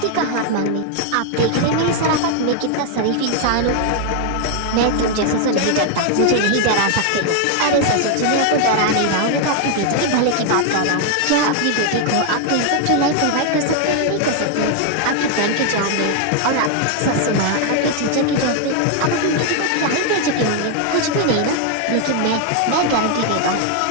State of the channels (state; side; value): different; both; correlation 0.00